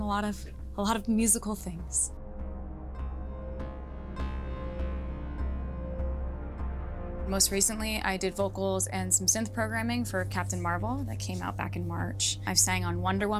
lot of musical things. Most recently, I did vocals and some synth programming for Captain Marvel that came out back in March. I've sang on Wonder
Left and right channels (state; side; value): identical; both; correlation 1.00